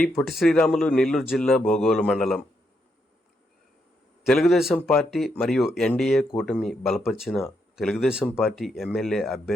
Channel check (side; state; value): both; normal; correlation 0.79